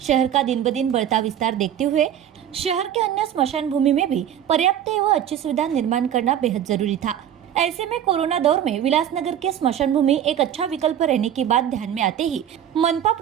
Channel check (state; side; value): quieter; left; 10.1 dB